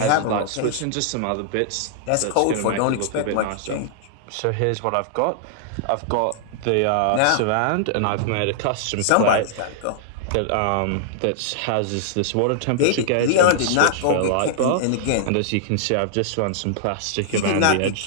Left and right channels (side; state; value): both; different; correlation -0.01